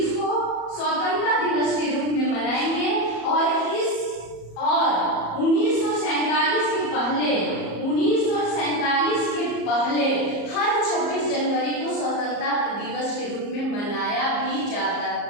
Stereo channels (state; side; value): late; right; 34 ms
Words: को स्वतंत्रता दिवस के रूप में मनाएंगे। और 1947 के पहले हर 26 जनवरी को स्वतंत्रता दिवस के रूप में मनाया भी जाता